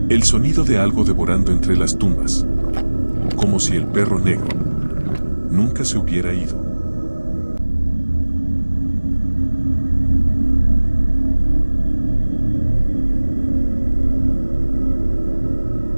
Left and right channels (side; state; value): both; inverted; correlation -1.00